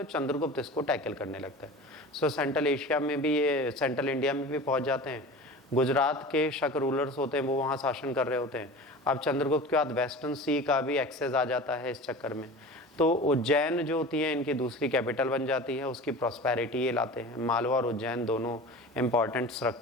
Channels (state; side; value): normal; both; correlation 0.35